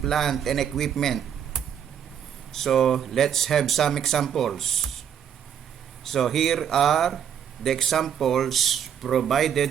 and equipment. So let's have some examples. So here are the examples provided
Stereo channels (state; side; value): quieter; left; 8.7 dB